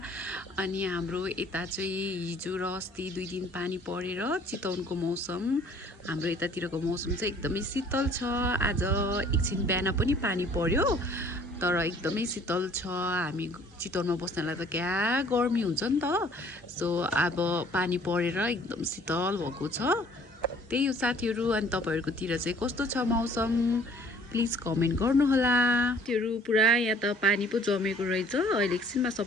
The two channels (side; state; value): both; normal; correlation 0.55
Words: अनि हाम्रो यता चाहिँ हिजो र अस्ति 2 दिन पानी परेर चितवनको मौसम, हाम्रो यतातिरको मौसम चाहिँ एकदमै शीतल छ। आज एकछिन बिहान पनि पानी पर्यो तर एकदमै शीतल छ। हामी चितवनमा बस्नलाई त क्या गर्मी हुन्छ नि त। सो अब पानी परेर एकदम शीतल भएको छ। त्यही हो साथीहरू। अनि तपाईँहरूकोतिर चाहिँ कस्तो छ मौसम, प्लिज कमेन्ट गर्नुहोला। त्योहरू पुरा यहाँ त पानी पो जमेको रहेछ। अहिले एकछिनमा